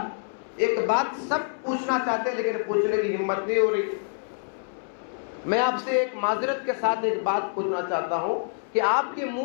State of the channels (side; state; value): right; silent; 61 dB below the other